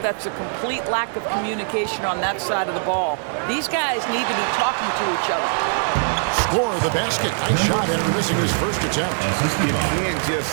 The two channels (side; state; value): left; silent; 57 dB below the other